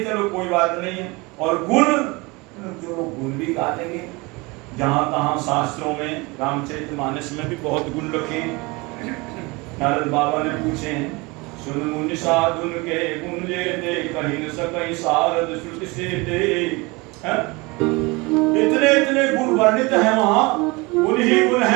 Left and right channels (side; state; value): left; quieter; 25.3 dB